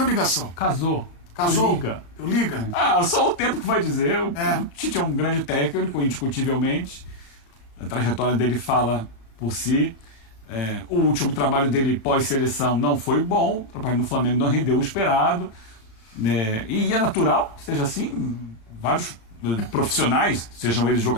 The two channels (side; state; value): right; late; 36 ms